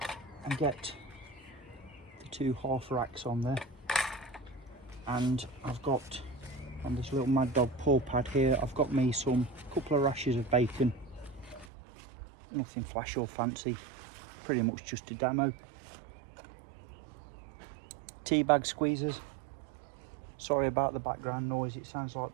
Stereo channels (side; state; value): left; drops out; at 11.7 s